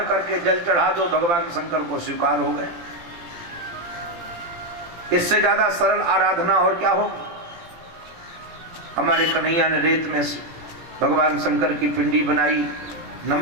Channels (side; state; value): left; late; 17 ms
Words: करके जल चढ़ा दो, भगवान शंकर को स्वीकार हो गए। इससे ज्यादा सरल आराधना और क्या हो। हमारे कन्हैया ने रेत में भगवान शंकर की पिंडी बनाई।